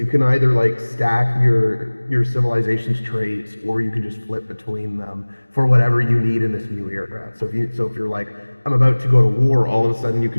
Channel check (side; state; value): both; inverted; correlation -1.00